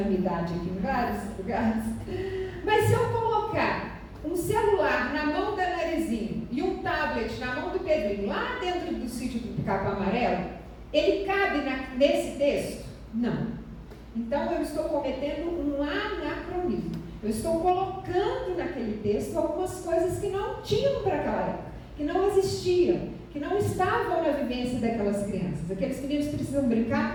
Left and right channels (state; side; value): identical; both; correlation 1.00